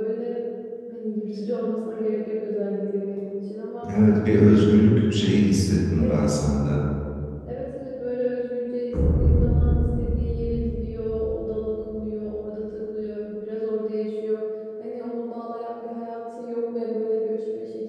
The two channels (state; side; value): identical; both; correlation 1.00